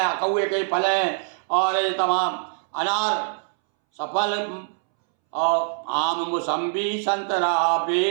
कौए के फल हैं, और ये तमाम अनार सफल। और आम मौसम्बी संतरा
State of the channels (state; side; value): silent; left; 63 dB below the other